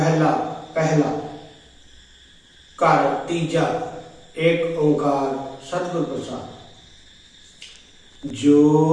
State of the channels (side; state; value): both; identical; correlation 1.00